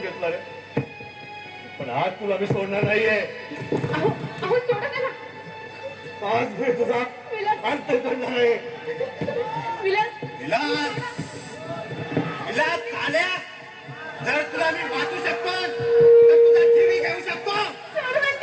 घेतला रे. पण आज तुला मी सोडणार नाहीये. अहो अहो सोडा त्याला. आज मी तुझा अंत करणार आहे. विलास विलास, विलास चाल्या, जर तुला मी वाचू शकतो तर तुझा जीवी घेऊ शकतो. सोड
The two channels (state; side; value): identical; both; correlation 1.00